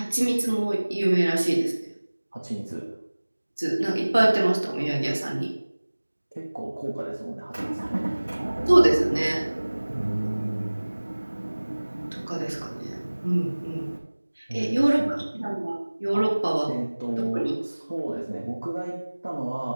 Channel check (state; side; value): inverted; both; correlation -1.00